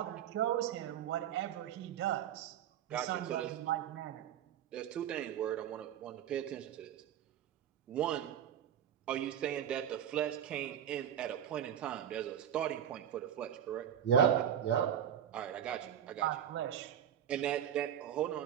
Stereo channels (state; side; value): quieter; left; 9.8 dB